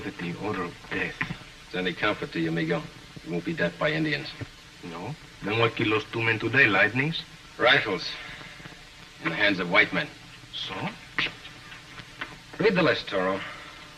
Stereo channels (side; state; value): both; identical; correlation 1.00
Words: it the odor of death. If it's any comfort to you, amigo, you won't be death by Indians. No? Then what killed those 2 men today? Lightnings? Rifles. In the hands of white men. So? Read the list, Toro.